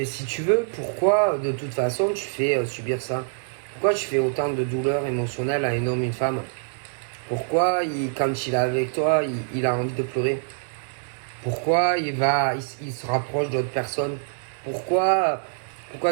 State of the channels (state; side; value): silent; left; digital silence